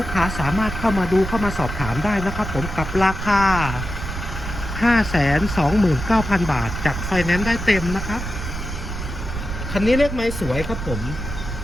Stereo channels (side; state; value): right; noise; rumble, 6 dB below the sound